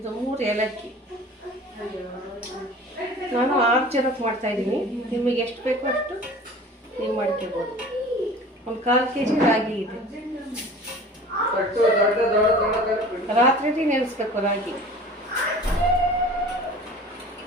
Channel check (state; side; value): normal; both; correlation 0.42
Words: 3 ಏಲಕ್ಕಿ. ನಾನು 6 ಜನಕ್ಕೆ ಮಾಡ್ತಾಯಿದ್ದೀನಿ. ನಿಮಗೆ ಎಷ್ಟು ಬೇಕೋ ಅಷ್ಟು ನೀವು ಮಾಡ್ಕೋಬೋದು. ಒಂದು 1/4 kg ರಾಗಿ ಇದೆ. ರಾತ್ರಿ ನೆನೆಸ್ಬೇಕು ರಾಗಿ.